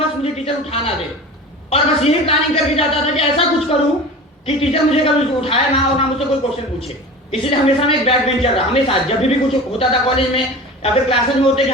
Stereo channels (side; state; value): both; normal; correlation 0.35